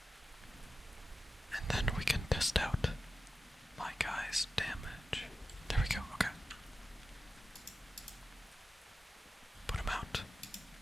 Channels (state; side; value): normal; both; correlation 0.92